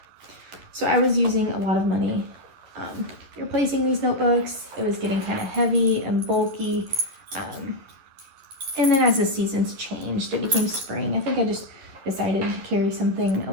So I was using a lot of money replacing these notebooks. It was getting kind of heavy and bulky. And then as the seasons changed, it became spring. I think I just decided to carry something a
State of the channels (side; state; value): left; late; 11 ms